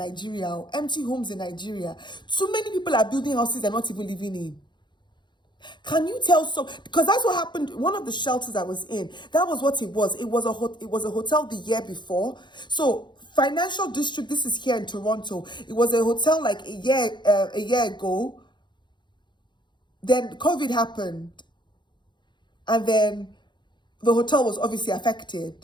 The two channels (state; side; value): late; right; 0.22 ms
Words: empty homes in Nigeria. Too many people are building houses they're not even living in. Can you tell because that's what happened. One of the shelters I was in, that was what it was. It was a hotel the year before. So Financial District, this is here in Toronto. It was a hotel like a year ago. Then COVID happened. And then the hotel was obviously